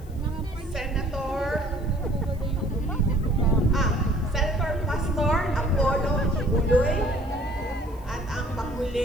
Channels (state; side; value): noise; left; hiss, 27 dB below the sound